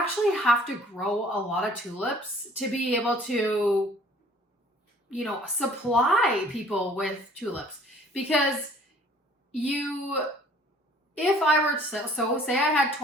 have to grow a lot of tulips to be able to, supply people with tulips. Because if I were to, so say I had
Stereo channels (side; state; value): both; normal; correlation 0.55